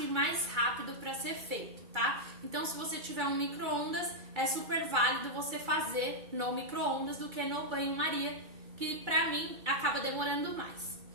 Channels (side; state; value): left; late; 2.3 ms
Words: e mais rápido para ser feito, tá? Então, se você tiver um micro-ondas, é super válido você fazer no micro-ondas do que no banho-maria, que pra mim acaba demorando mais.